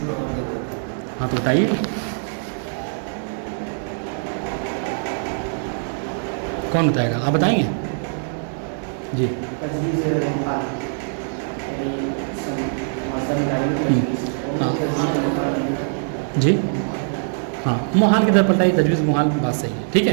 ہاں تو بتائیے. کون بتائے گا؟ آپ بتائیں گے؟ جی جی ہاں، محال کی طرف پلٹائی، تجویز محال، بات صحیح ہے. ٹھیک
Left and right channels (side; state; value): left; silent; 62 dB below the other